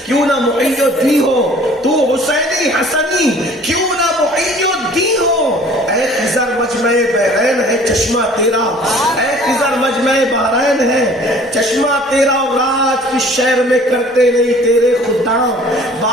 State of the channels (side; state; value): both; normal; correlation 0.51